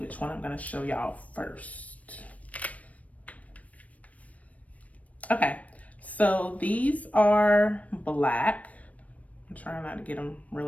one I'm gonna show y'all first. Okay, so these are black. I'm trying not to get them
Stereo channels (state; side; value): late; right; 0.068 ms